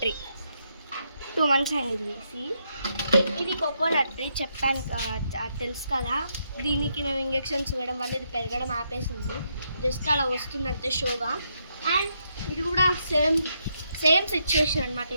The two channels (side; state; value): both; inverted; correlation -0.78